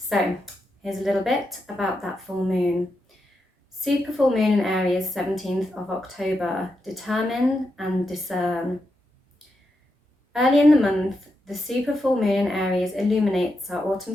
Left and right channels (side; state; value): both; normal; correlation 0.85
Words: here's a little bit about that full moon. Super full moon in Aries, 17th of October. Determine and discern. Early in the month, the super full moon in Aries illuminates our autumn